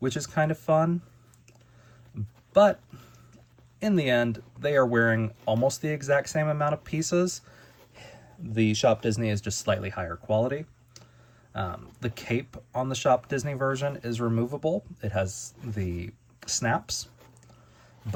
is kind of fun. But in the end, they are wearing almost the exact same amount of pieces. The Shop Disney is just slightly higher quality. The cape on the Shop Disney version is removable. It has the snaps,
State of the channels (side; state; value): both; identical; correlation 1.00